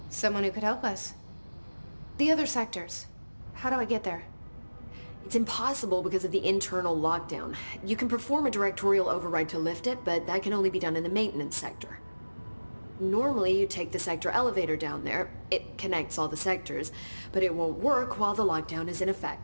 Someone who could help us. The other sectors. How do I get there? It's impossible because of the internal lockdown. You can perform a directorial override to lift it, but that can only be done in the maintenance sector. Normally, you take the sector elevator down there. It connects all the sectors, but it won't work while the lockdown is in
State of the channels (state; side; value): inverted; both; correlation -1.00